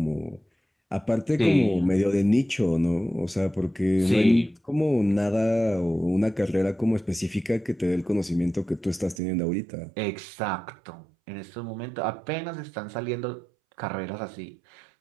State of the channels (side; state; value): left; drops out; at 9.2 s